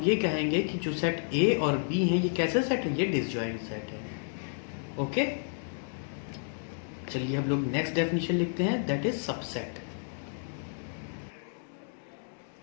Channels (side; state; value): right; silent; digital silence